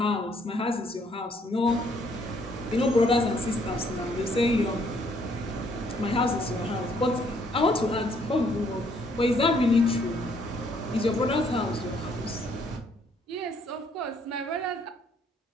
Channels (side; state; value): both; normal; correlation 0.67